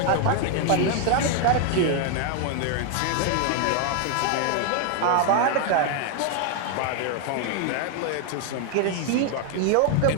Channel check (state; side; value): different; both; correlation 0.01